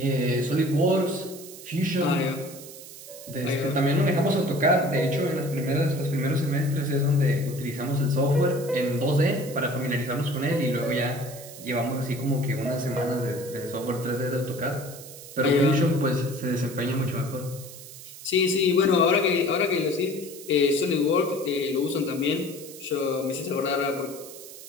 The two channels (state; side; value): noise; right; hiss, 15 dB below the sound